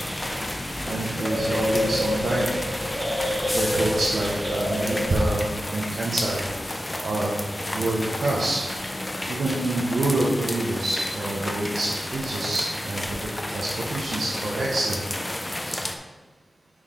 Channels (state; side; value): normal; both; correlation 0.92